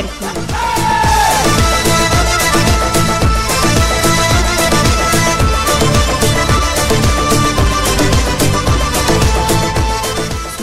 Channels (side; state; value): both; identical; correlation 1.00